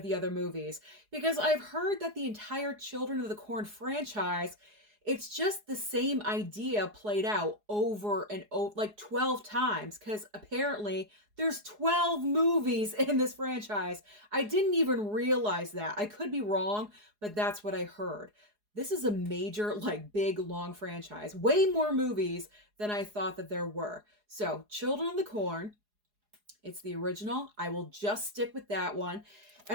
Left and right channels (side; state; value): left; late; 4.8 ms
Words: the other movies because I've heard that the entire Children of the Corn franchise, it's just the same idea played out over and over, like 12 times, because apparently there's 12 movies in this franchise. I didn't even realize that. I could be wrong, but that's what I heard. This is a major, big, long franchise. Way more movies than I thought that there were. So, Children of the Corn, it's the original. I will just stick with that one.